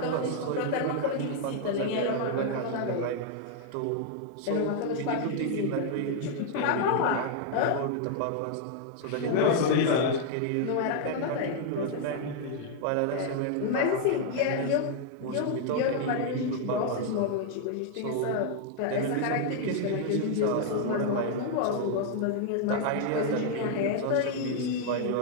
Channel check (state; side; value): different; both; correlation 0.00